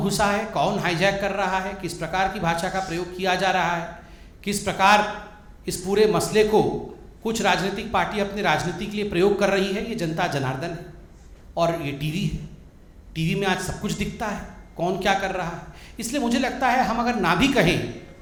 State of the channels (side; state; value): both; identical; correlation 1.00